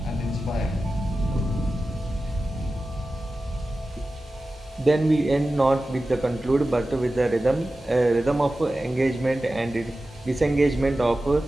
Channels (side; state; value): both; normal; correlation 0.94